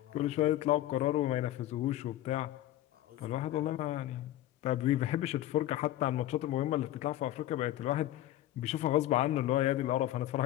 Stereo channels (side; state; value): right; quieter; 14.0 dB